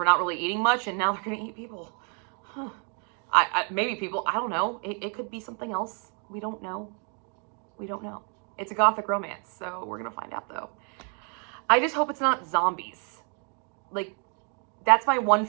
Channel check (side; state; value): left; quieter; 40.0 dB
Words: not really eating much, and now they're going to eat people. Huh. Maybe people, I don't know. It could be something else. We don't know. We don't know. It's a gothic romance, so we're going to find out though. I just hope it's not zombies. Like, that's my one